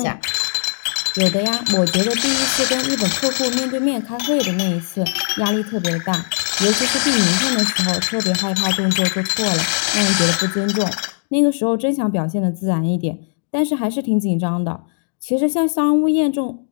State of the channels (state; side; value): silent; right; digital silence